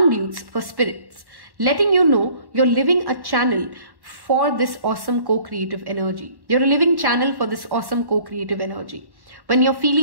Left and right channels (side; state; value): left; late; 1.1 ms